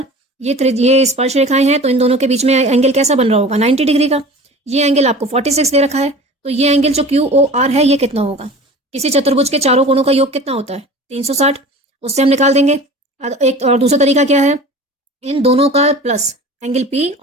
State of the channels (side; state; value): both; normal; correlation 0.39